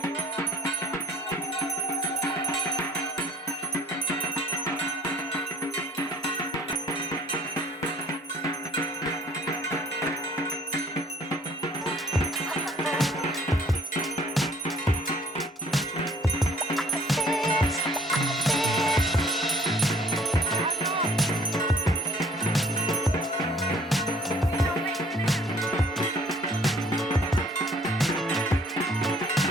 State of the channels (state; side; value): normal; both; correlation 0.56